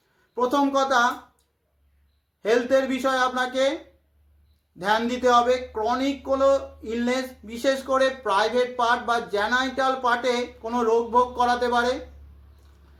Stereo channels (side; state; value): both; identical; correlation 1.00